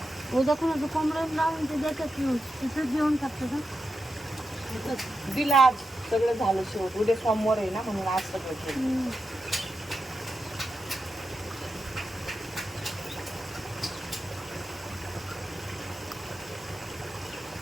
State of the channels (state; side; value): normal; both; correlation 0.88